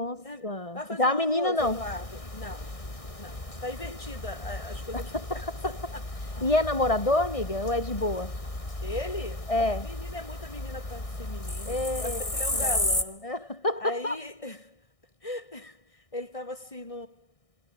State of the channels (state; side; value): late; right; 1.6 ms